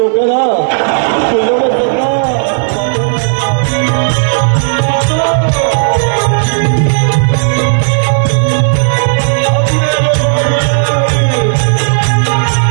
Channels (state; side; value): silent; left; digital silence